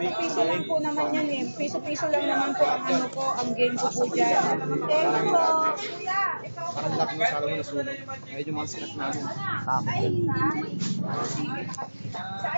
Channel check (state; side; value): inverted; both; correlation -1.00